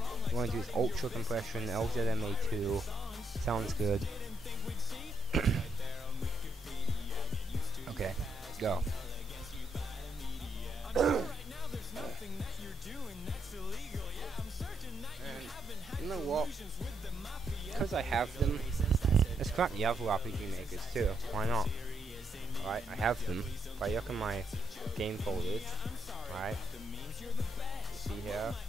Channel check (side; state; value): both; normal; correlation 0.77